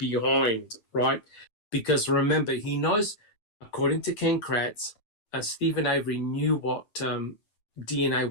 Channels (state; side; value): late; right; 9.0 ms